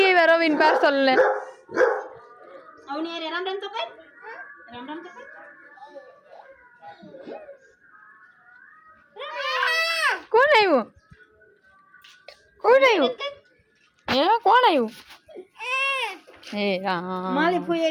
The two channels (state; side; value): identical; both; correlation 1.00